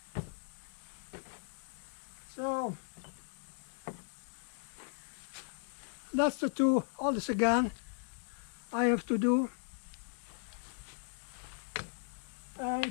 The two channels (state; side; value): silent; right; digital silence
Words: So that's the two others again I have to do, and